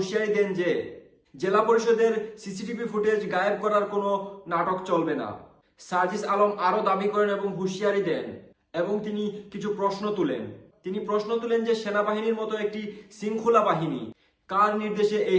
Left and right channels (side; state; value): both; identical; correlation 1.00